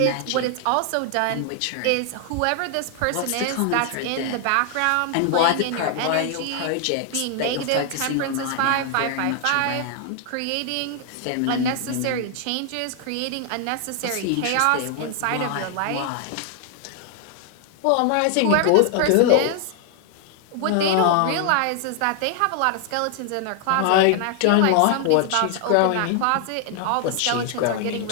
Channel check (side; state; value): both; different; correlation 0.00